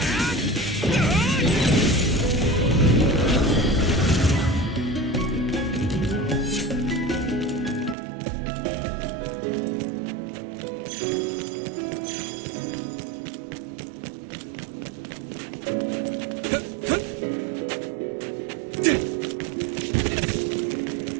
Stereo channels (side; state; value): left; drops out; at 8.0 s